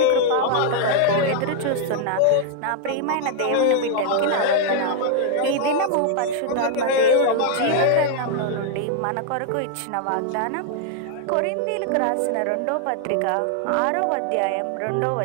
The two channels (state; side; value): different; both; correlation 0.00